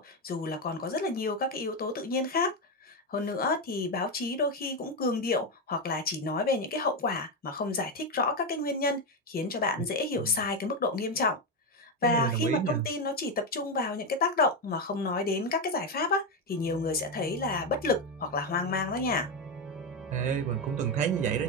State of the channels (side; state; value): both; normal; correlation 0.09